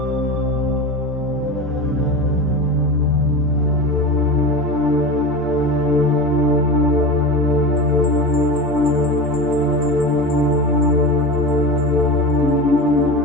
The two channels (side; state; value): both; normal; correlation 0.26